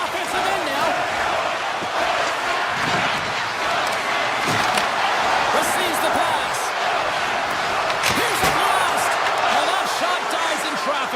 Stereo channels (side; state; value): both; identical; correlation 1.00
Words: end now. Receives the pass. Here's the blast. And that shot dies in